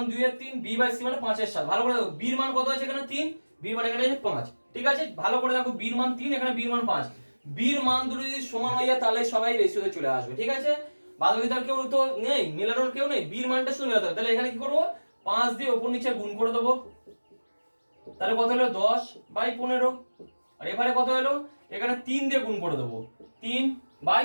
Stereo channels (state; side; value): inverted; both; correlation -1.00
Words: 2 এর 3, b বাই c মানে 5 এর 7। ভালো করে দেখো, b এর মান কত আছে এখানে 3, b এর মান এখানে 5। ঠিক আছে, ভালো করে দেখো, b এর মান 3, এখানে b এর মান 5। b এর মান দুটো যদি সমান হয়ে যায় তাহলে সবাই রেশিওতে চলে আসবে। ঠিক আছে, বাদবাকিটার কেউ তো নেই, মেলানোর কেউ নেই, b এর মানটা শুধু মেলাতে হবে। তাহলে এখানে কি করব, 5 দিয়ে উপর নিচে গুণ করে দেবো। তাহলে কত হলো, 10 বাই 15। আর এবারে কত হলো, এখানে 3 দিয়ে গুণ করে দেবো, 3 বাই